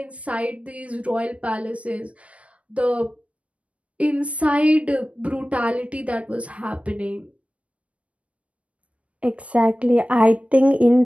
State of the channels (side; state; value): left; late; 0.064 ms